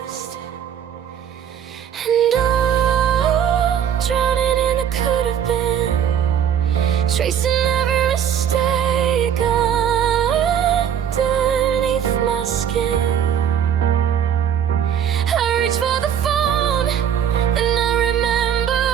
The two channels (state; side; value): quieter; left; 9.0 dB